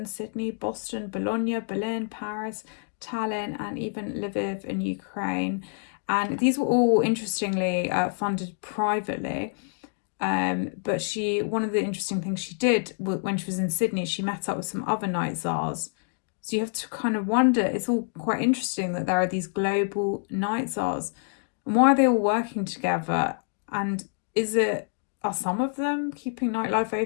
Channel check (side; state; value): right; silent; digital silence